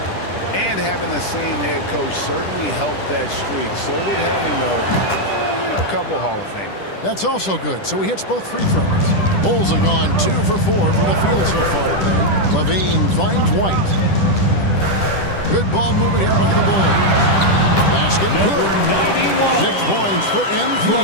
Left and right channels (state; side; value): late; right; 10 ms